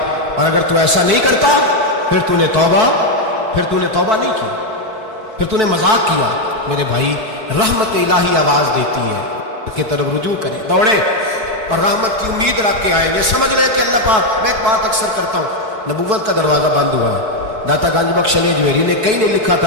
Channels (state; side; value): late; left; 4.6 ms